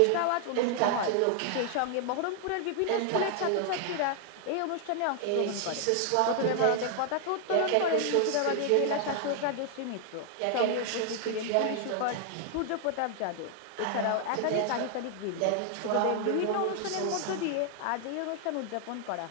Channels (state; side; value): different; both; correlation 0.00